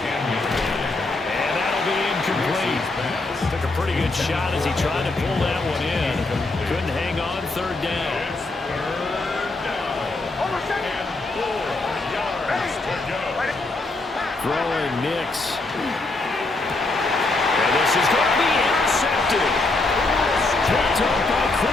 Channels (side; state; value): right; quieter; 3.2 dB